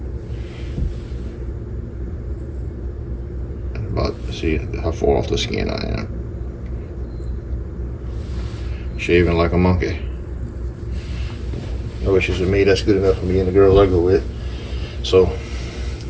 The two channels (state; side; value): identical; both; correlation 1.00